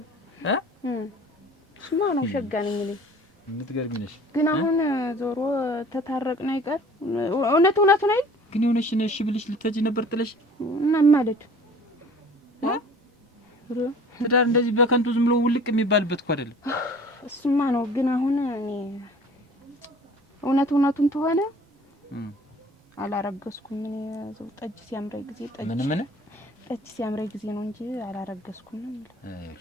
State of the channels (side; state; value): both; normal; correlation 0.48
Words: ስማ ነው ሸጋ ነኝ እኔ የምትገርሚ ነሽ። ግን አሁን ዞሮ ተታረቅን አይቀር እውነቱን አይደል? ግን የሆነሽ ነሽ ብልሽ ልትሄጂ ነበር ጥለሽ እና ማለት ትዳር እንደዚህ በከንቱ ዝም ብሎ ውልቅ የሚባልበት እኮ አይደለም። እሱማ ነው። ግን አሁን እኔ እውነቱን ተሆነ አላረገዝኩም። እኔ ዘው ጠጅ ሲያምረኝ ጊዜ ጠጅ ሲያምረኝ ጊዜ ነው እንጂ አላረገዝኩም።